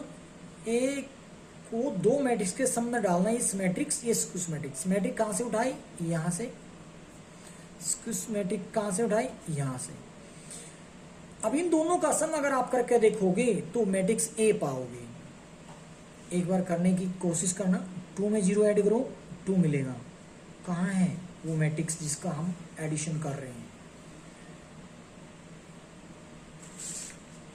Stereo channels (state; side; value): identical; both; correlation 1.00